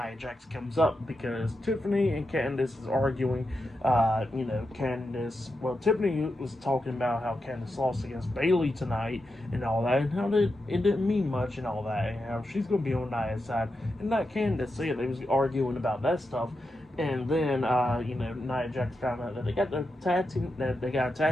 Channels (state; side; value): normal; both; correlation 0.87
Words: Jax comes up because Tiffany and Candice is arguing. Tiffany was talking about how Candice lost against Bayley tonight and all that, and how it didn't mean much and all that, and how she's going to be on Nia's side and not Candice. So, yeah, they was arguing about that stuff. And then, Nia Jax found out that they got a